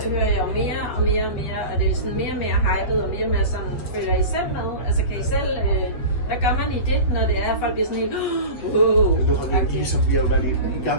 hører jeg jo mere og mere og mere, og det er sådan mere og mere hypet, og mere og mere sådan, følger I selv med? Altså kan I selv, hvad gør man i det, når det er, at folk bliver sådan helt, vi har jo været i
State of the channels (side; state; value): right; late; 7.9 ms